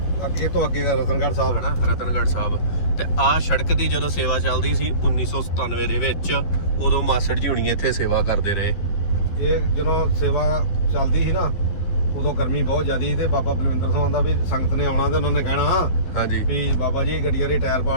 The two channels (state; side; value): late; right; 11 ms